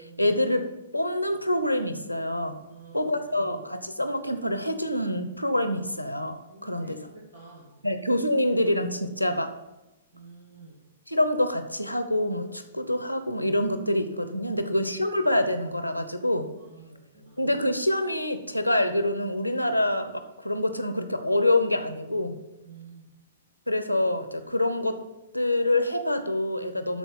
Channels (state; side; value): inverted; both; correlation -0.84